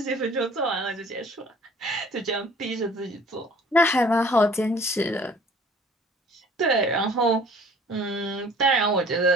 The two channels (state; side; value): normal; both; correlation 0.52